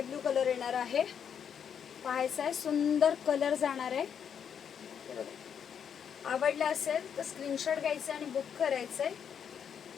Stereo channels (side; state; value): right; quieter; 7.9 dB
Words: ब्लू कलर येणार आहे. पाहायचा आहे, सुंदर कलर जाणार आहे. हे बघा, आवडलं असेल तर स्क्रीनशॉट घ्यायचं आणि बुक करायचं आहे.